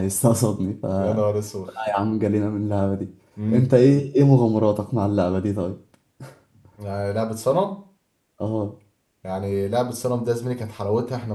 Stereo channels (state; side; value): identical; both; correlation 1.00